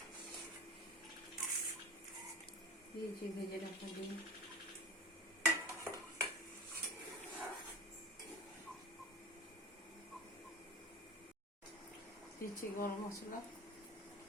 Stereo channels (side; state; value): both; normal; correlation 0.36